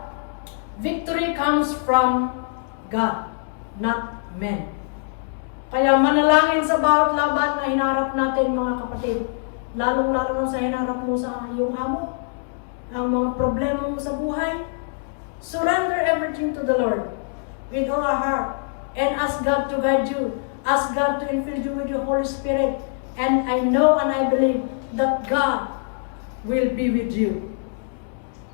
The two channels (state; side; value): silent; right; 63 dB below the other